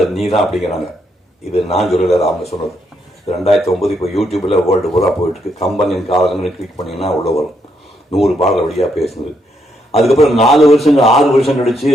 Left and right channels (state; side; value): normal; both; correlation 0.77